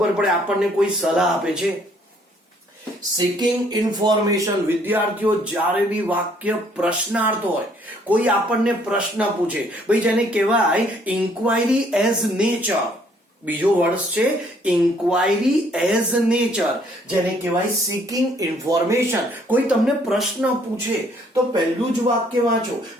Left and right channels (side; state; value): both; normal; correlation 0.63